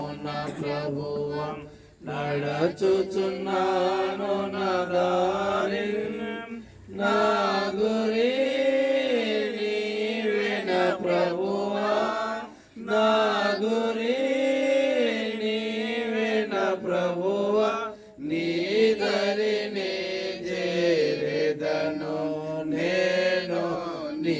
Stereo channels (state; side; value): identical; both; correlation 1.00